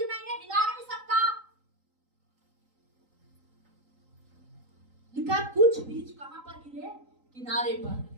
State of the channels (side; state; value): left; late; 3.8 ms